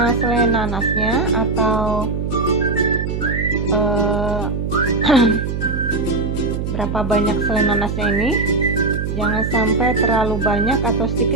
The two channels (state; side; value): noise; right; hum, 3 dB below the sound